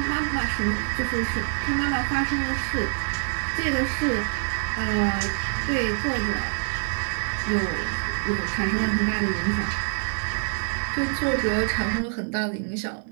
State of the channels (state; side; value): silent; left; digital silence